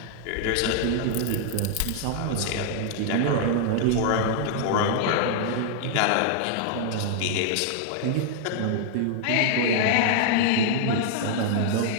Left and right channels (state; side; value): different; both; correlation -0.01